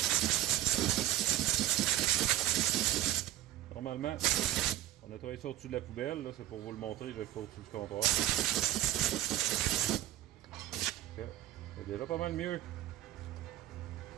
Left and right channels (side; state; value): left; quieter; 13.9 dB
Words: Normalement, on nettoie ça au-dessus de la poubelle. C'est pour vous le montrer, je vais le faire au-dessus du comptoir. C'est déjà pas mal mieux.